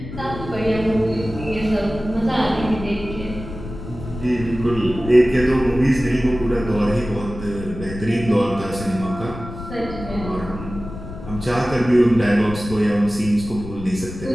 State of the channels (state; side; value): noise; left; rumble, 11 dB below the sound